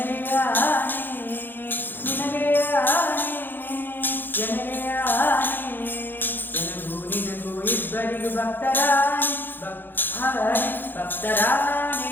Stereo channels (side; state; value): right; late; 0.094 ms